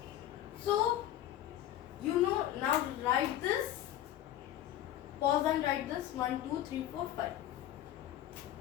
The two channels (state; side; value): quieter; right; 12.5 dB